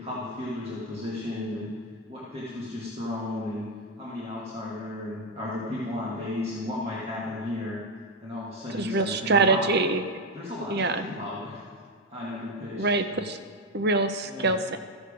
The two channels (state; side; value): normal; both; correlation 0.07